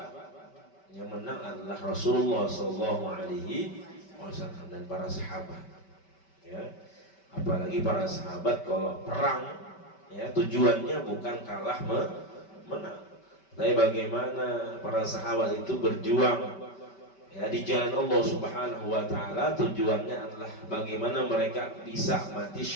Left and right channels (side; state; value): right; late; 5.2 ms